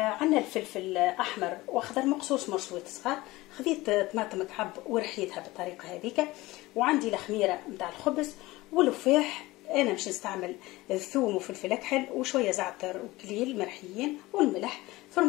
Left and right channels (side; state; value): right; quieter; 19.6 dB